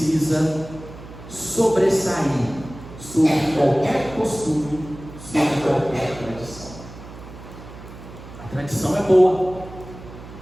sobressair sobre qualquer costume, sobre qualquer tradição. A tradição é boa,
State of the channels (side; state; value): right; noise; hum, 15 dB below the sound